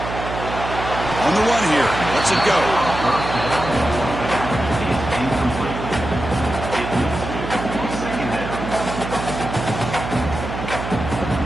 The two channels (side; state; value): right; noise; hum, 6 dB below the sound